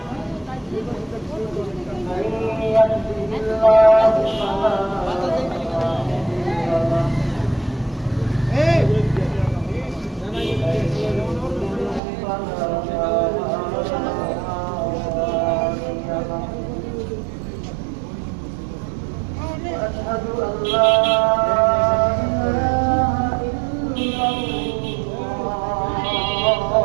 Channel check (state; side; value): drops out; left; at 12.0 s